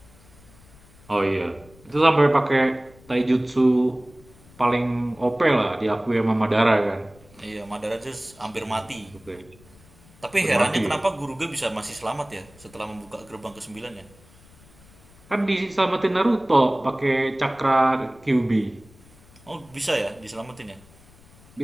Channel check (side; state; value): left; noise; rumble, 26 dB below the sound